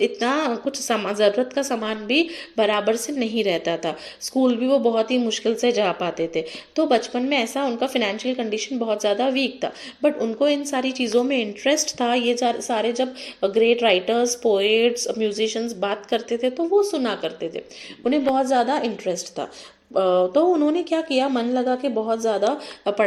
इतना कुछ ज़रूरत का सामान भी बराबर से नहीं रहता था, स्कूल भी वो बहुत ही मुश्किल से जा पाते थे। तो बचपन में ऐसा उनका फिनेंशियल कंडीशन बहुत ज़्यादा वीक था, बट उनको इन सारी चीज़ों में इंटरेस्ट था। ये सारे जब ग्रेट राइटर्स, पोएट्स, म्यूजिशियंस बात करते थे तो वो सुना करते थे, उन्हें बहुत ज़्यादा इंटरेस्ट था। तो उन्होंने क्या किया, मन लगा के बहुत ज़्यादा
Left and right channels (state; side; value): identical; both; correlation 1.00